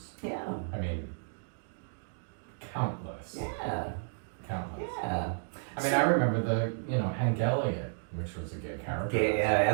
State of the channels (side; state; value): left; silent; digital silence